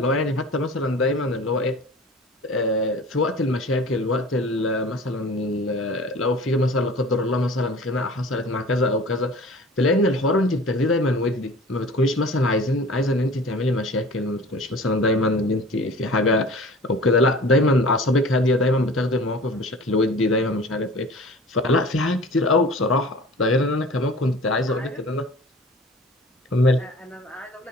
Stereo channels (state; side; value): normal; both; correlation 0.42